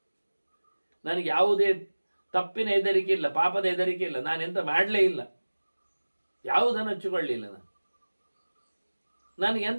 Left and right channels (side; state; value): both; inverted; correlation -1.00